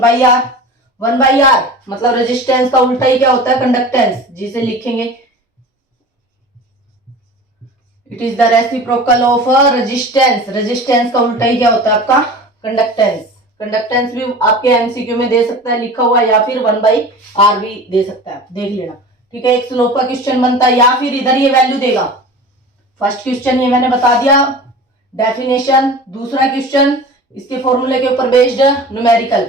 1/r मतलब रेजिस्टेंस का उल्टा ही क्या होता है? कंडक्टेंस, जिसे लिखेंगे it is the reciprocal of resistance. Resistance का उल्टा ही क्या होता है आपका? कंडक्टेंस। कंडक्टेंस भी आपके एमसीक्यू में दे सकता है लिखा हुआ, या फिर 1/r भी दे सकता है, देख लेना। ठीक है, एक स्लोप का क्वेश्चन बनता है, या फिर इधर ये वैल्यू देगा। फर्स्ट क्वेश्चन ये मैंने बता दिया डेफिनेशन। दूसरा क्वेश्चन इसके फॉर्मूले के ऊपर बेस्ड न्यूमेरिकल।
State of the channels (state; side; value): normal; both; correlation 0.37